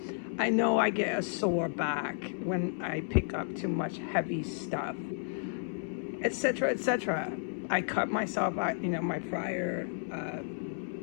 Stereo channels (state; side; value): silent; right; 56 dB below the other